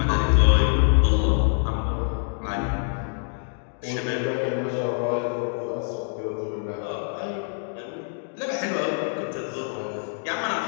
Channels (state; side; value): silent; right; 62 dB below the other